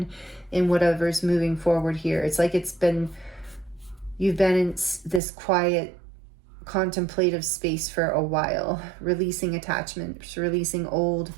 in whatever's moving forward here. It's like you've been in this quiet, contemplative space for a while, releasing attachments, releasing old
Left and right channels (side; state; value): left; drops out; at 5.2 s